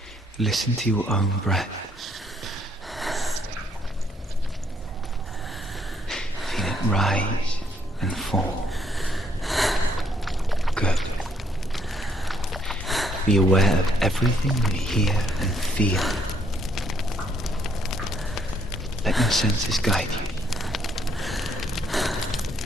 Listen to your own breath. Feel it rise and fall. Good. Be aware of everything you hear and feel. Let your senses guide you.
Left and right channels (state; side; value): normal; both; correlation 0.70